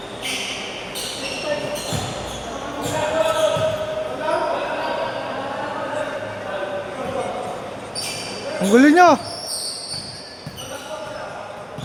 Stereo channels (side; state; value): both; identical; correlation 1.00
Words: Ang gulo nyo.